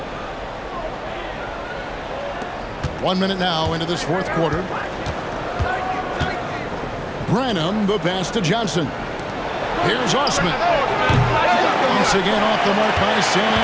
One minute now into this fourth quarter. Branham, the pass to Johnson. Here's Osman. Once again off the mark by San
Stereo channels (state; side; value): identical; both; correlation 1.00